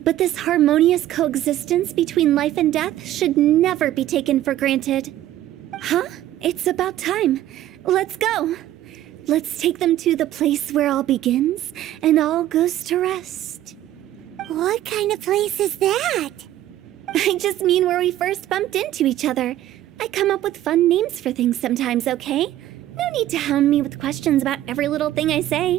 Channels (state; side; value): quieter; left; 13.4 dB